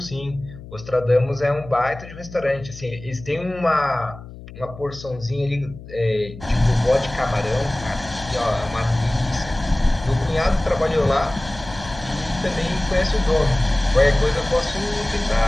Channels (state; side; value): noise; left; hum, 15 dB below the sound